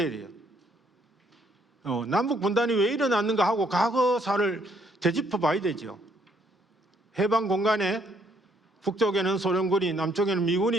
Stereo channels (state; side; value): normal; both; correlation 0.68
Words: 해야 돼요? 남북 분단이 왜 일어났는가 하고 과거사를 되짚어 봐야 되죠. 해방 공간에 북쪽에는 소련군이, 남쪽에는